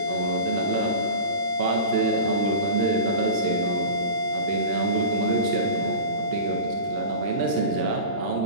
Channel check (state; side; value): late; left; 40 ms